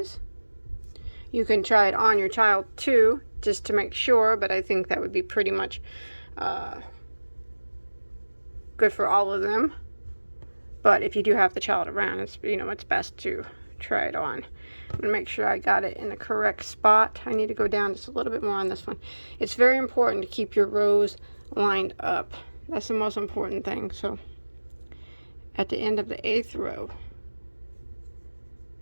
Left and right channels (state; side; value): inverted; both; correlation -1.00